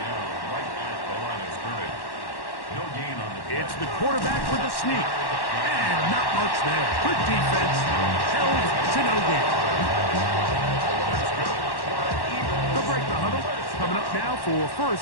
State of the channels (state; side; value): late; right; 1.1 ms